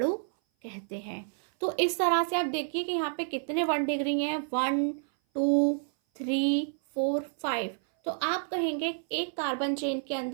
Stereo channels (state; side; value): silent; left; 56 dB below the other